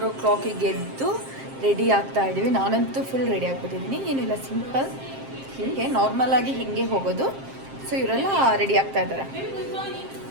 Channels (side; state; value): left; late; 7.5 ms